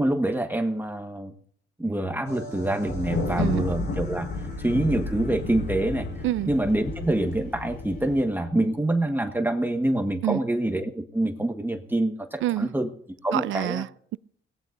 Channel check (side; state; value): both; normal; correlation 0.82